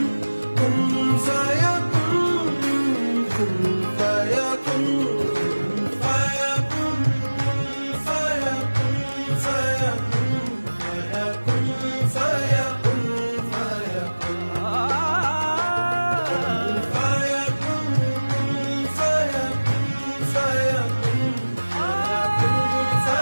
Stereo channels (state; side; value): inverted; both; correlation -1.00